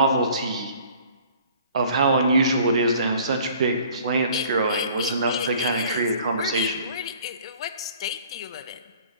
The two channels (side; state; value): both; inverted; correlation -0.52